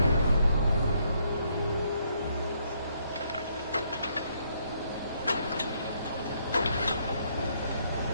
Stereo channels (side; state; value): both; inverted; correlation -0.71